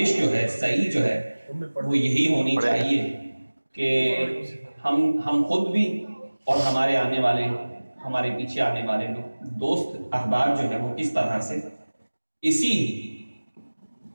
جو ہے صحیح جو ہے وہ یہی ہونی چاہیے کہ ہم خود بھی اور ہمارے آنے والے ہمارے پیچھے آنے والے لوگ دوست احباب جو ہے وہ کس طرح سے اسی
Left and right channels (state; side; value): inverted; both; correlation -1.00